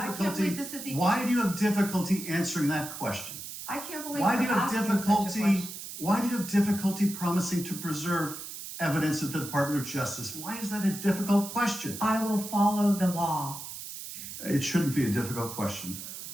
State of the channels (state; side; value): noise; right; hiss, 10 dB below the sound